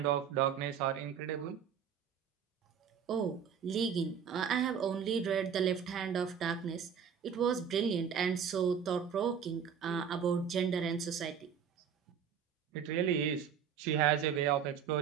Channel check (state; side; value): quieter; left; 7.5 dB